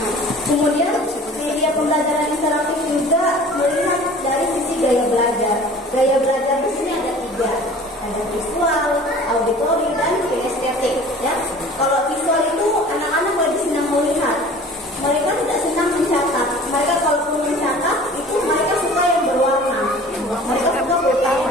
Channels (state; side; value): normal; both; correlation 0.45